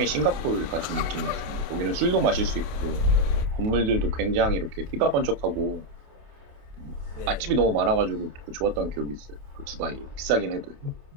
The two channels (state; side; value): late; left; 28 ms